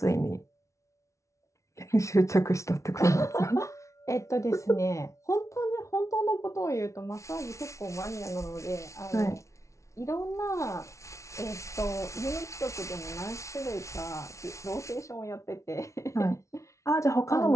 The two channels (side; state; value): right; late; 0.14 ms